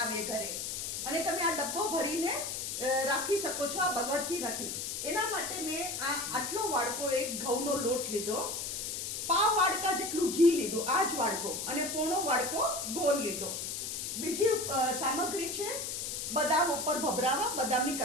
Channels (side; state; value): left; noise; hiss, 4 dB below the sound